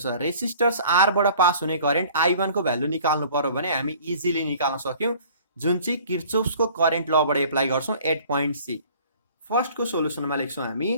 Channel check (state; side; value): inverted; both; correlation -0.50